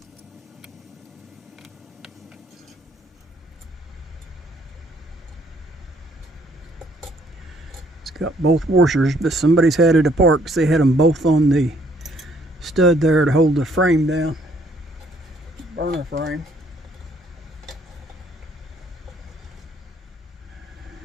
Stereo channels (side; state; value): both; normal; correlation 0.65